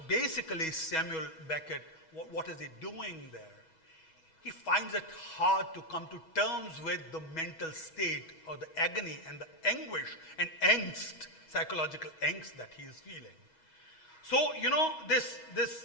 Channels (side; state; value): right; late; 6.2 ms